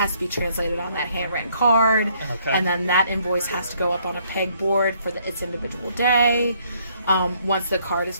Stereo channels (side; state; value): both; inverted; correlation -0.67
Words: to be translated on that handwritten card. Okay. And then that invoice has to go up on a pegboard for its individual day. Once the card is